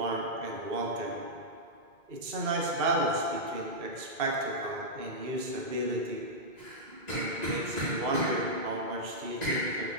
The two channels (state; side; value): late; left; 2.2 ms